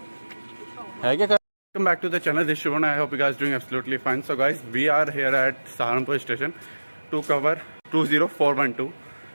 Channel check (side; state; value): both; inverted; correlation -1.00